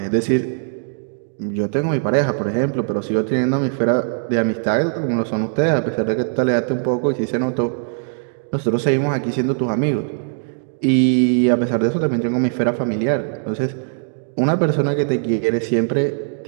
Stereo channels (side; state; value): left; silent; digital silence